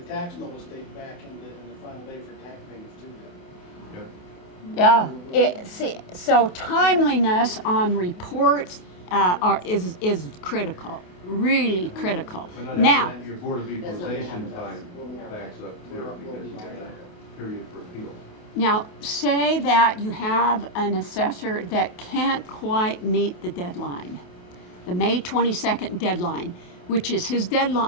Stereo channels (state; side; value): late; right; 28 ms